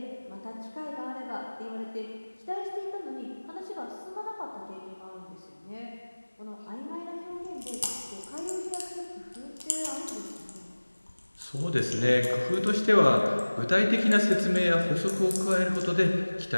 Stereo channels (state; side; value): inverted; both; correlation -1.00